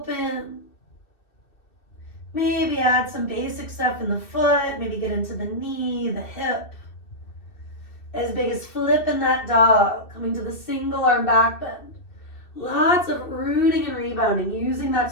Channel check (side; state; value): right; late; 2.6 ms